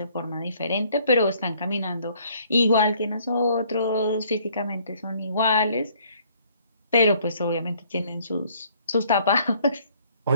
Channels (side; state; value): both; inverted; correlation -0.62